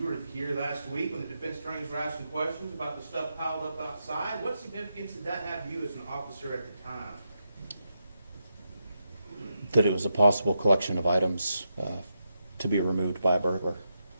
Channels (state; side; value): inverted; both; correlation -0.85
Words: were here last week when the defense attorneys were asking questions about the stuff piled up outside. What significance did that have to you as an officer at the time? That it was a possible collection of items to be removed by a burglar.